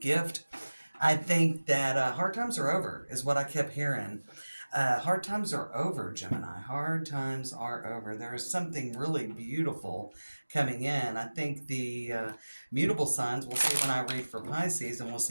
I think that hard times are over, is what I kept hearing. Hard times are over, Gemini. Hard times are over. There is something really beautiful coming in. I think the mutable signs, we'll see when I read for Pisces, and we'll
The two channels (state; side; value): inverted; both; correlation -1.00